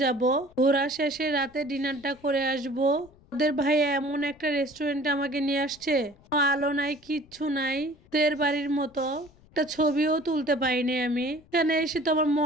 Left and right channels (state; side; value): noise; left; rumble, 27 dB below the sound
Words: যাব, ঘোরা শেষে রাতে ডিনারটা করে আসবো। ওদের ভাই এমন একটা রেস্টুরেন্টে আমাকে নিয়ে আসছে, আলো নাই, কিচ্ছু নাই, তের বাড়ির মতো। একটা ছবিও তুলতে পাইনি আমি। এখানে এসে তো আমার